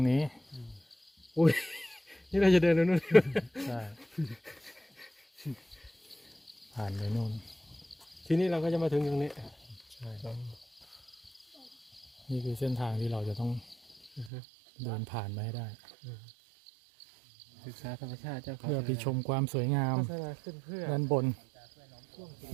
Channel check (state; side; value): drops out; left; at 14.3 s